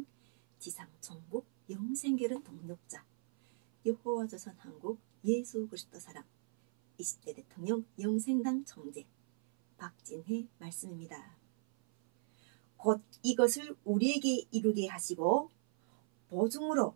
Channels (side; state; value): left; silent; 53 dB below the other